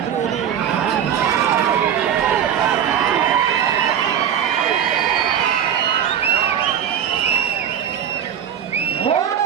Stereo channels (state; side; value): quieter; left; 9.1 dB